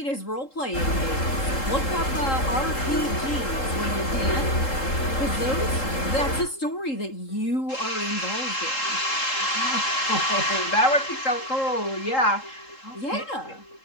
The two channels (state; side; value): late; right; 3.7 ms